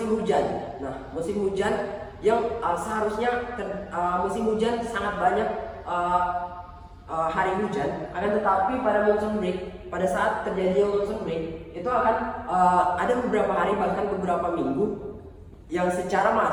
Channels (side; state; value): both; identical; correlation 1.00